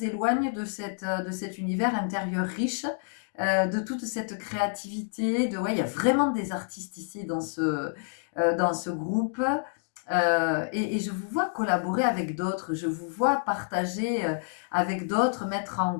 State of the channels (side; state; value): right; silent; digital silence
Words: éloigne de cet univers intérieur riche, de toute cette créativité. Ouais, il y a vraiment des artistes ici dans ce groupe. Et je vous vois collaborer avec d'autres, je vous vois partager avec d'autres, mettre en